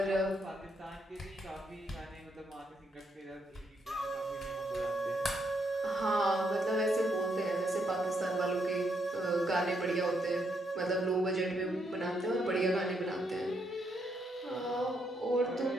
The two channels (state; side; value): normal; both; correlation 0.76